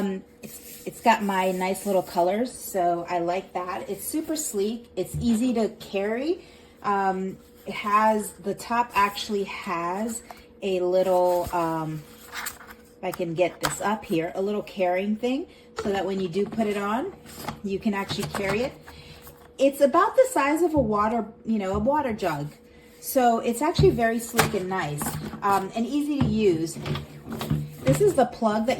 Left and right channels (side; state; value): both; identical; correlation 1.00